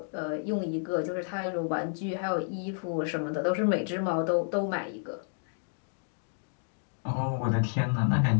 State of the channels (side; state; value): right; silent; digital silence